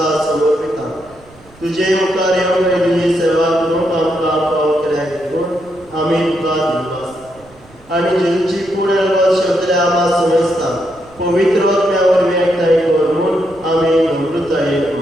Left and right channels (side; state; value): right; noise; rumble, 26 dB below the sound